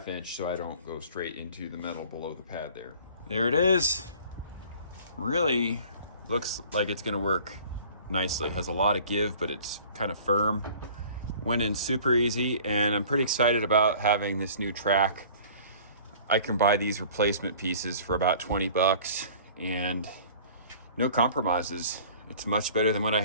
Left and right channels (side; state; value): both; inverted; correlation -0.48